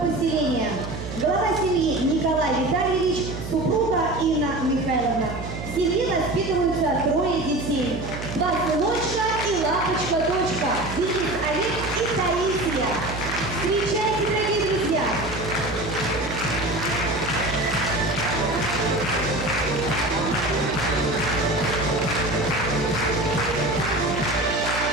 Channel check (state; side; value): noise; right; hum, 8 dB below the sound